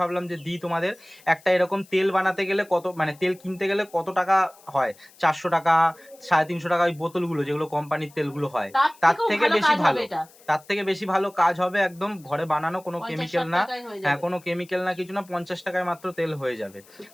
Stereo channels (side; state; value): left; noise; hiss, 26 dB below the sound